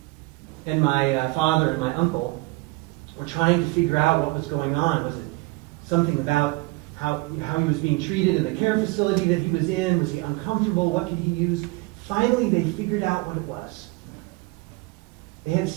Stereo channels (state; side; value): quieter; left; 23.7 dB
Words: And my father and my uncle were trying to figure out what was going on. Was it something about how he was being treated in the care facility that he was in? Was he uncomfortable? What could he use? Finally, they figured out what it was. They had